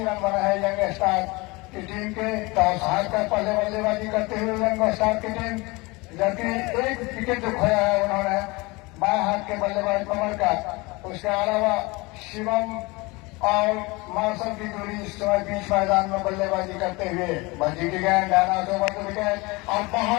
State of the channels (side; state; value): right; quieter; 24.6 dB